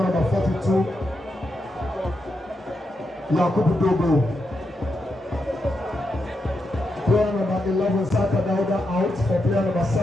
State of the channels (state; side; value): normal; both; correlation 0.84